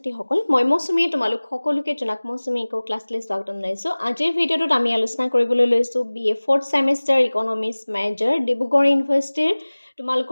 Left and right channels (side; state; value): both; inverted; correlation -1.00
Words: মই মৌচুমীয়ে তোমালোক সকলোকে জনাক মৌচুমী ইকো ক্লাছলৈ স্বাগতম জনাইছোঁ। আজিৰ ভিডিঅ'টোত আমি আলোচনা কৰিবলৈ লৈছোঁ BA 4th semester economics major Dibrugarh ইউনিভাৰ্চিটিৰ